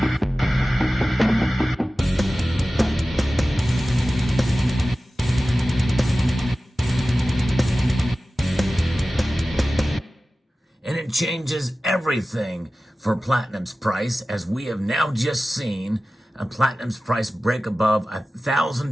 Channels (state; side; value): normal; both; correlation 0.96